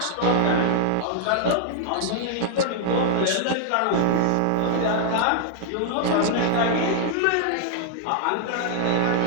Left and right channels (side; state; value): both; different; correlation -0.01